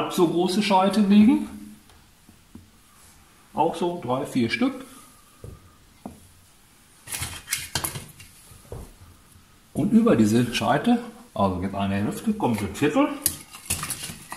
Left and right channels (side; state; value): both; identical; correlation 1.00